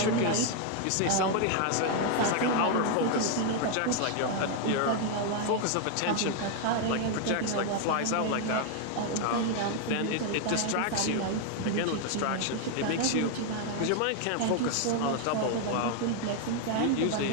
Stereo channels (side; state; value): both; different; correlation 0.00